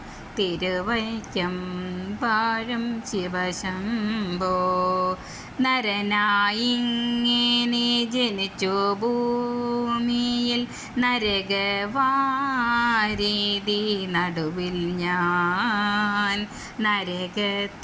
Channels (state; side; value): identical; both; correlation 1.00